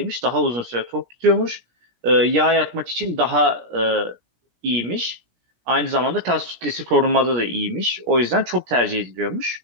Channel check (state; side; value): late; left; 17 ms